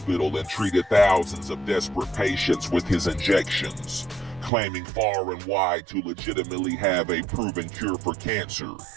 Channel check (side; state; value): left; drops out; at 4.5 s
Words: and treated thousands of desperate patients with his injections, claiming far and wide to legitimately have a proven cure for cancer